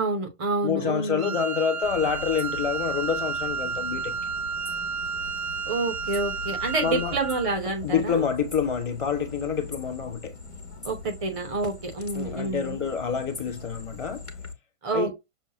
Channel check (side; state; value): left; late; 1.5 ms